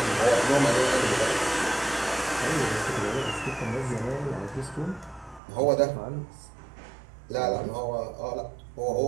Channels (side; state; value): left; drops out; at 5.4 s